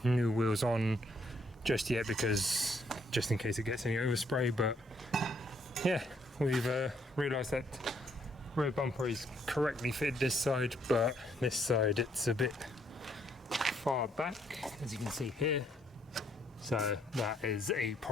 new wheels on just yet, because just in case it gets any overspray, but yeah, we've realised that rear bumper is correctly fitted this side, but this side it's a bit far back, as you can see here. So that is a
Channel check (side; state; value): both; normal; correlation 0.70